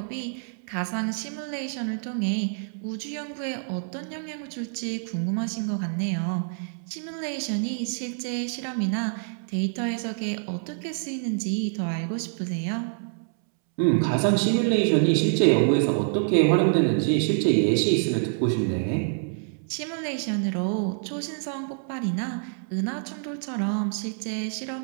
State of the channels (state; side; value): silent; left; 60 dB below the other